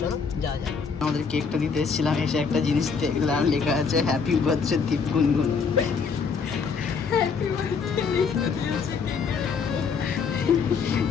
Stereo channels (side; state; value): right; quieter; 5.6 dB